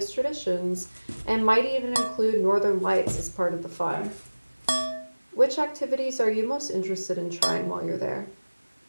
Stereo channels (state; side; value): inverted; both; correlation -1.00